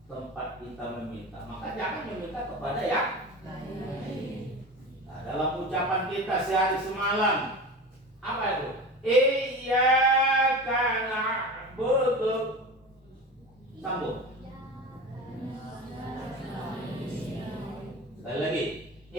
tempat kita meminta. Maka jangan meminta kepada yang lain. Nah, dalam ucapan kita sehari semalam, apa itu? Iyyaka na'budu. Sambung. Sekali lagi.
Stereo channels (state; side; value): normal; both; correlation 0.31